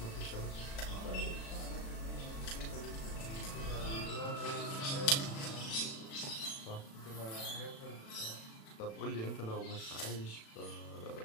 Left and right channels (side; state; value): right; late; 36 ms